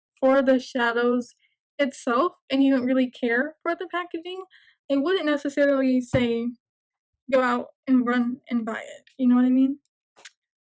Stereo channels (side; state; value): both; identical; correlation 1.00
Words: for the shadows itself and you don't really care for the packaging, I wouldn't necessarily say go out and run and buy it. You know what I mean?